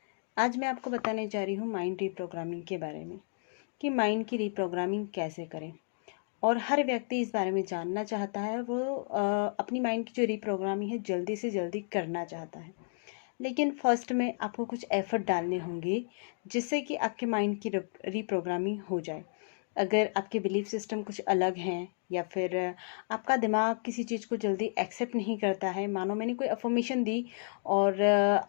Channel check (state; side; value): silent; right; digital silence